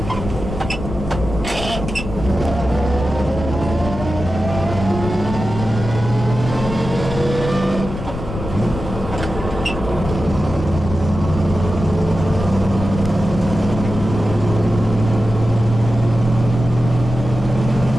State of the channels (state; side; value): noise; left; rumble, 8 dB below the sound